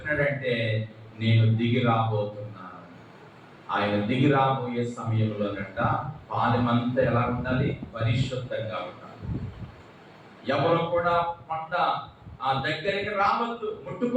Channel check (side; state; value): both; identical; correlation 1.00